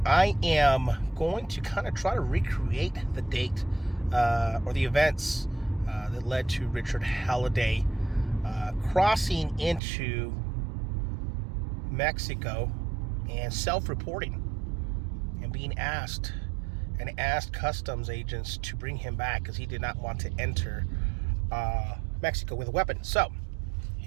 am going to kind of try to recreate the date or the events that led to Richard Halliday crossing into Mexico and self-reporting and being asked customs agents to bring him back because he did not want to enter Mexico with a weapon. So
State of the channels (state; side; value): drops out; left; at 9.8 s